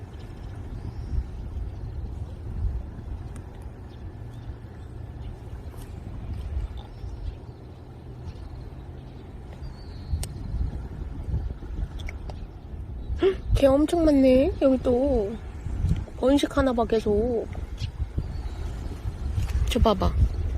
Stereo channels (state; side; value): identical; both; correlation 1.00